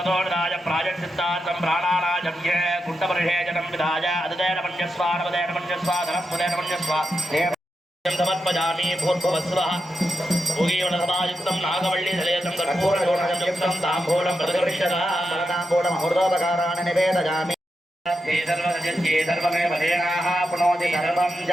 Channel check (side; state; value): both; normal; correlation 0.87